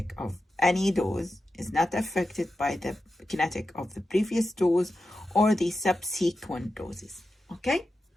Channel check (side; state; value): both; normal; correlation 0.91